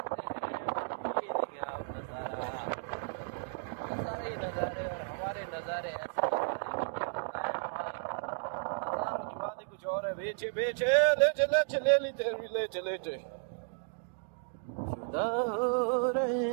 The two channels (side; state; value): left; silent; digital silence